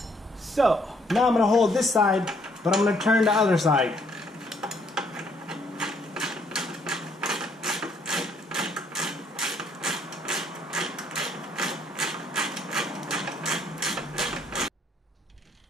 So now I'm gonna hold this side, but I'm gonna turn the other side.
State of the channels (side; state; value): both; normal; correlation 0.67